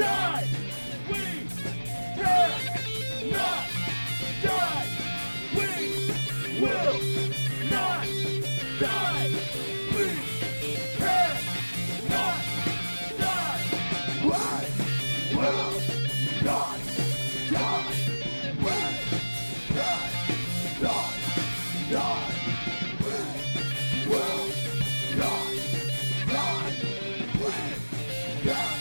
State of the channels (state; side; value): inverted; both; correlation -1.00